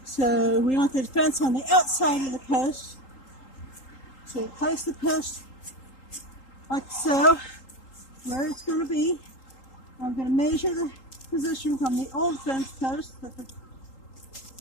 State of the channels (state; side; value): late; right; 3.8 ms